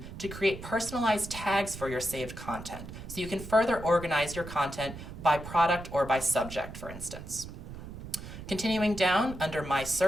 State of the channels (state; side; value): noise; right; rumble, 11 dB below the sound